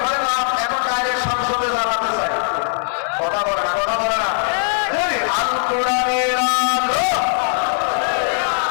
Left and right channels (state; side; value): silent; right; 60 dB below the other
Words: ঘরে না, এখন ডাইরেক্ট সংসদে জ্বালাতে চাই। কথা বলে না, কথা বলে না। আল কোরআনের আলো,